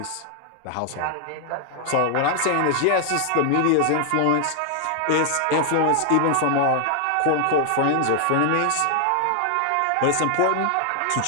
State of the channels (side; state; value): both; different; correlation 0.00